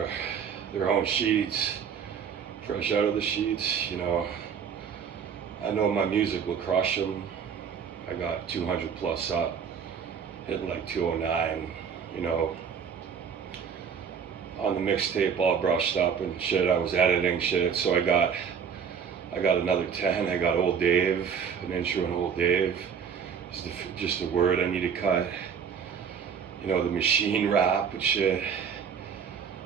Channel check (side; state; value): left; quieter; 7.1 dB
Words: their own sheets, fresh out of the sheets. You know, I know my music will crush them. I got 200 plus up, hitting like 209, you know, on the mixtape all brushed up and shit. I was editing shit, so I got another 10. I got Old Dave, an intro on Old Dave. Just a word I need to cut. You know, the machine rap and shit.